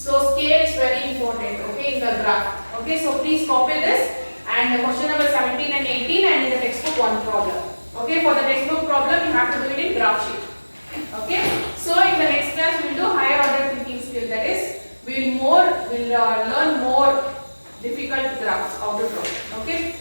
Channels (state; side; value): inverted; both; correlation -1.00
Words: scale is very important, okay, in the graph. Okay, so please copy this and the question number 17 and 18 and in the textbook one problem. Okay, for the textbook problem you have to do it in graph sheet. Okay, so in the next class we will do higher order thinking skill. That is, we will learn more difficult graphs how to draw. Okay,